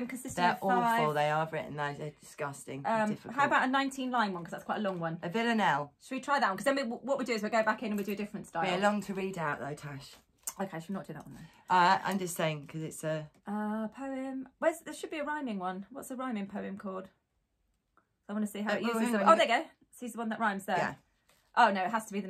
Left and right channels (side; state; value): both; identical; correlation 1.00